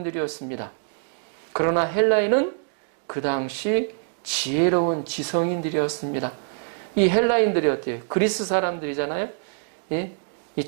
그러나 헬라인은 그 당시 지혜로운 지성인들이었습니다. 이 헬라인들이 어때요? 그리스 사람들이잖아요. 예? 이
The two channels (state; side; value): silent; left; digital silence